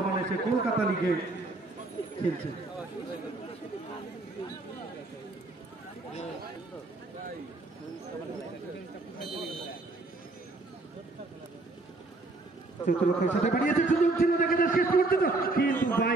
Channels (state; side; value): quieter; left; 3.2 dB